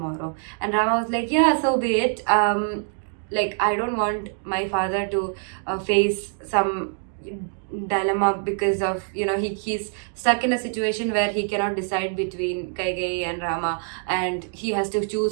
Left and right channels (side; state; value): left; silent; 62 dB below the other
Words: And Rama was like, yeah, so be it. Like, I don't want my father to face some dilemma because of, he's stuck in a situation where he cannot decide between Kaigeyi and Rama, and he has to